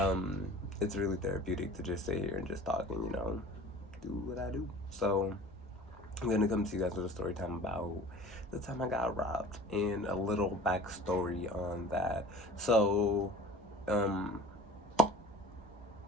It's really therapeutic to just sit here and just talk and do what I do. So I'm gonna come to you guys with a story time about the time I got robbed and a little backstory on that. So um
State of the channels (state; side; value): normal; both; correlation 0.43